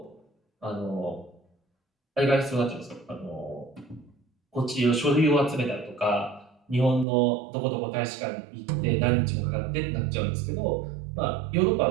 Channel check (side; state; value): left; drops out; at 7.1 s